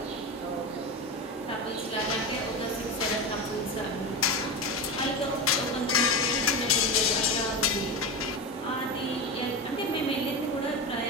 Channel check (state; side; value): normal; both; correlation 0.20